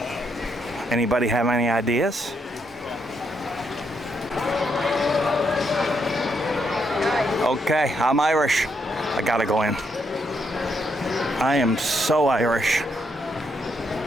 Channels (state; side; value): normal; both; correlation 0.77